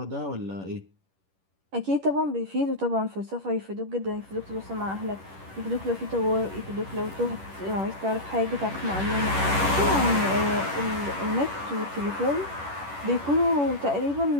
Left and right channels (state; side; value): late; left; 10 ms